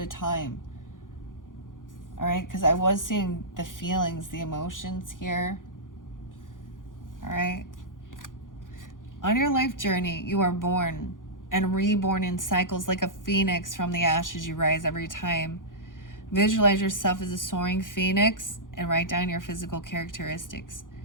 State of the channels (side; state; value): right; late; 0.89 ms